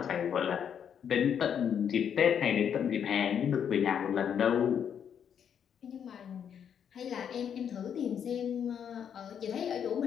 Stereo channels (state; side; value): quieter; right; 8.2 dB